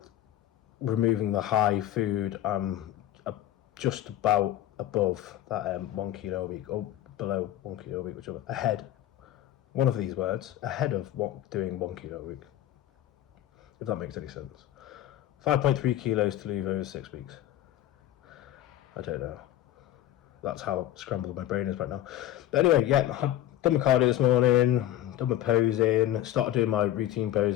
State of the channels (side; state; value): right; quieter; 12.7 dB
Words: removing the high food, I'm just about above that 1 kilo a week, or below 1 kilo a week, whichever. Ahead, one of these words, ahead of doing 1 kilo a week, if that makes any sense. 5.3 kilos to leave over 6 weeks. I don't know. That's how scrambled my brain is right now. But anyway, yeah, I've done my cardio this morning, done my posing, started doing my routine